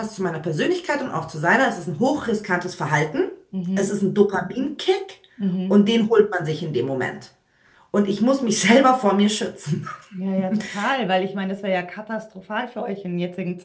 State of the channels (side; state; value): both; identical; correlation 1.00